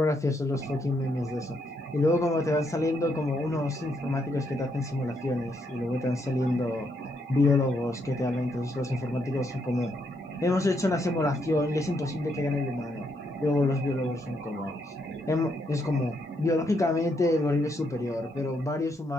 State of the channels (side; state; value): both; normal; correlation 0.76